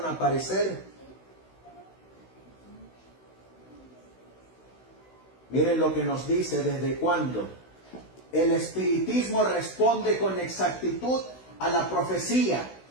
a aparecer? Miren lo que nos dice, ¿desde cuándo? El espiritismo responde con exactitud a la profecía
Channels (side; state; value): right; late; 16 ms